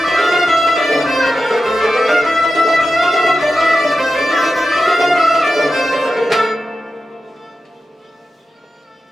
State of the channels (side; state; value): both; normal; correlation 0.91